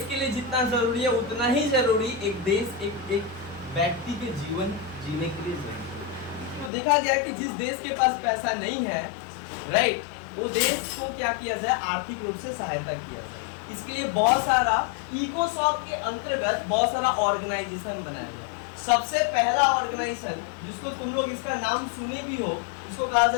के लिए जितना जरूरी है उतना ही जरूरी एक देश, एक व्यक्ति के जीवन जीने के लिए जरूरी। तो देखा गया कि जिस देश के पास पैसा नहीं है, राइट, वो देश को क्या किया जाए, आर्थिक रूप से सहायता किया जाए। इसके लिए बहुत सारा इकोसॉफ्ट के अंतर्गत बहुत सारा ऑर्गेनाइजेशन बनाया गया। सबसे पहला ऑर्गेनाइजेशन जिसको तुम लोग इसका नाम सुने भी हो, इसको कहा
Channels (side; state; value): right; drops out; at 6.7 s